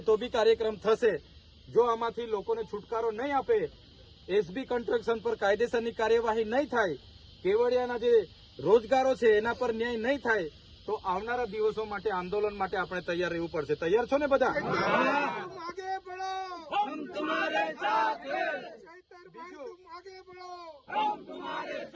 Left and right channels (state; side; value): identical; both; correlation 1.00